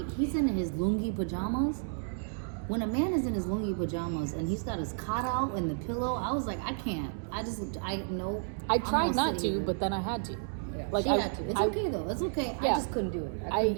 He's in his lungi pajamas. When a man is in his lungi pajamas and he's got his cot out and the pillow, I was like, I can't. I tried I tried not to, but then I had to. Yeah, Like she had to. It's okay though. It's okay. I Yeah. just couldn't do it. I couldn't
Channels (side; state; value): left; silent; digital silence